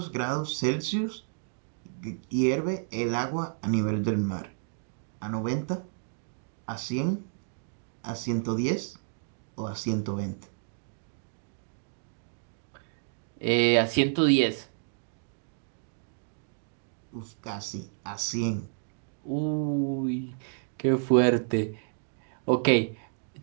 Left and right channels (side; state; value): left; silent; digital silence